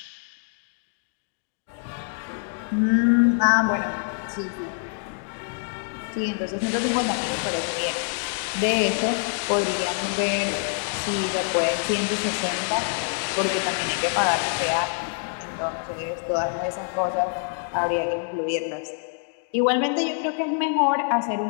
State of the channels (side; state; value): right; silent; 56 dB below the other